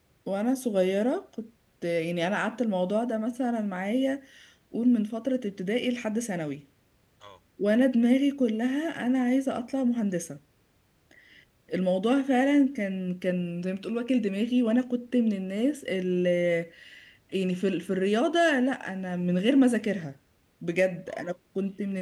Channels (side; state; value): both; identical; correlation 1.00